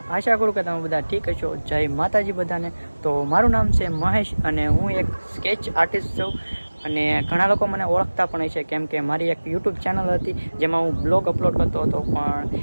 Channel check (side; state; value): both; inverted; correlation -1.00